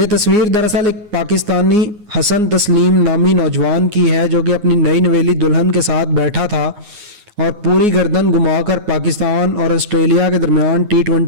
तस्वीर दरअसल एक पाकिस्तानी हसन तस्लीम नामी नौजवान की है जो कि अपनी नई नवेली दुल्हन के साथ बैठा था और पूरी गर्दन घुमाकर पाकिस्तान और ऑस्ट्रेलिया के दरमियान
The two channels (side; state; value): left; late; 9.6 ms